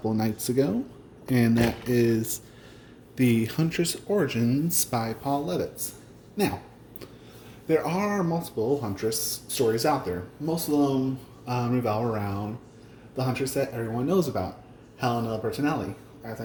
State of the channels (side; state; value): both; identical; correlation 1.00